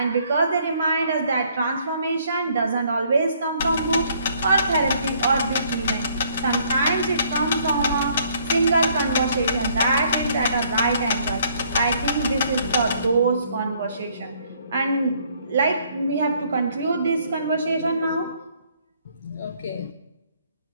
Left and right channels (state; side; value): inverted; both; correlation -0.65